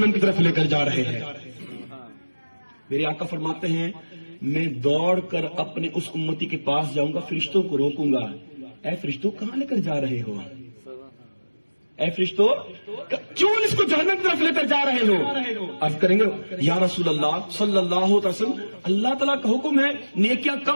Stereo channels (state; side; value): inverted; both; correlation -1.00